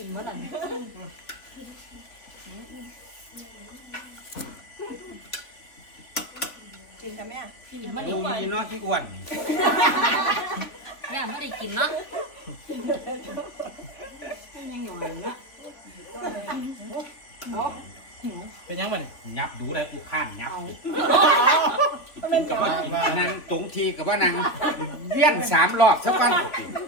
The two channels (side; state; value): right; late; 3.6 ms